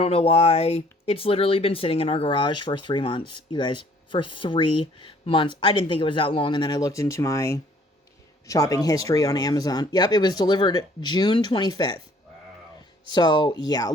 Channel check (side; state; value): both; normal; correlation 0.59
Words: know why. It's literally been sitting in our garage for 3 months, you guys. For 3 months. I didn't think it was that long. And then I looked into my shopping history on Amazon. Yep, it was delivered June 25th. Wow. So, yeah, a